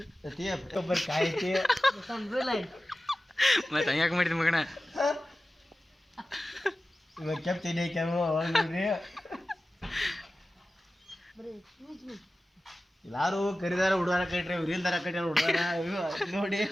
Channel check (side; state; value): both; normal; correlation 0.95